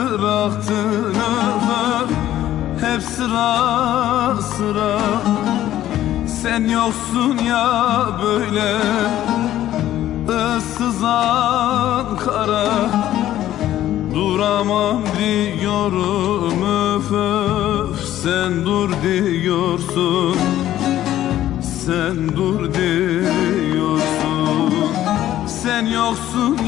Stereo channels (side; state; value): right; quieter; 13.0 dB